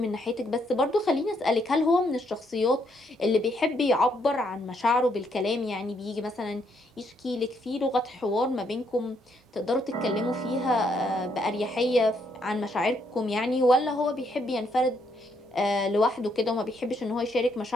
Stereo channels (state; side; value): normal; both; correlation 0.73